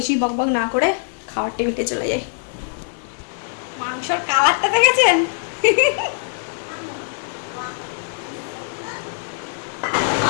বকবক না করে খাওয়ার টেবিলে চলে যাই। মাংসর কালারটা দেখেছেন?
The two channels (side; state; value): right; silent; digital silence